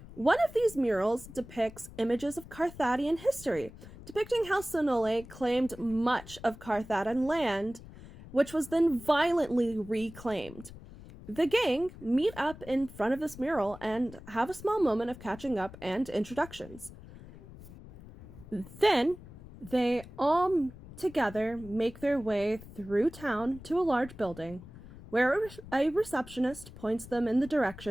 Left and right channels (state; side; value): noise; left; rumble, 17 dB below the sound